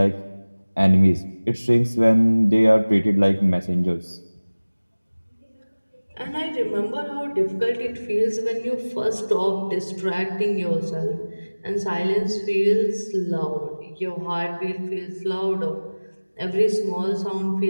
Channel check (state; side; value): inverted; both; correlation -1.00